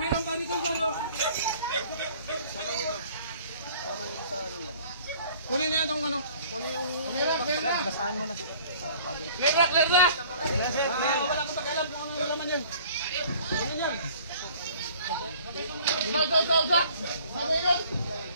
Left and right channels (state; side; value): inverted; both; correlation -0.52